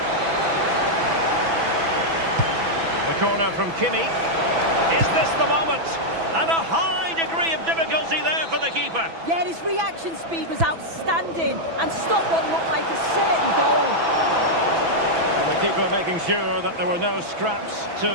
The corner from Kimi. Is this the moment? And a high degree of difficulty there for the keeper. Yeah, his reaction speed was outstanding and stopped what looked like a certain goal. And the keeper making sure that there were no scraps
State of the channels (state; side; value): late; left; 6.0 ms